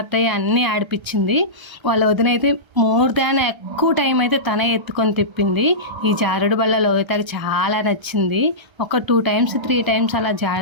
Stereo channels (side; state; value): left; late; 1.3 ms